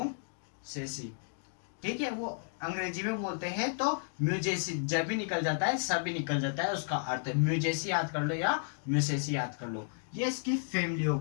ठीक है, वो अंग्रेजी में बोलते हैं तो म्यूजेसी, जब भी निकल जाता है सब भी निकल जाता है, उसका अर्थ है म्यूजेसी याद कर लो या म्यूसेसी याद कर लो। ये इसकी फैमिली हो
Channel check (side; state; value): right; silent; digital silence